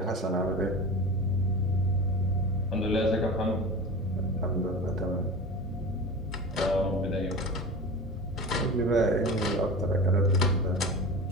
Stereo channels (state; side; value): normal; both; correlation 0.31